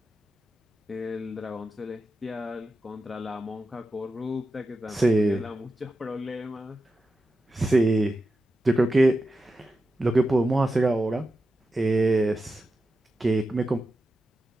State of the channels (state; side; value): normal; both; correlation 0.90